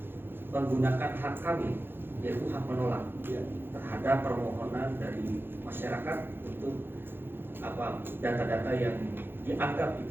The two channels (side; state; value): left; late; 0.10 ms